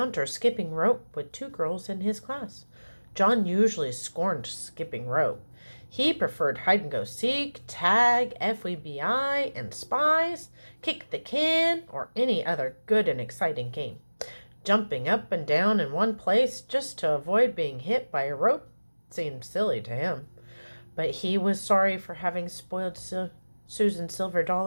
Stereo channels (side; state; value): both; inverted; correlation -1.00